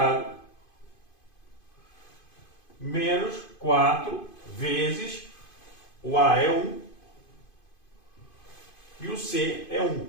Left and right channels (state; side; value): late; right; 2.5 ms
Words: menos 4 vezes o a é 1 e o c é 1.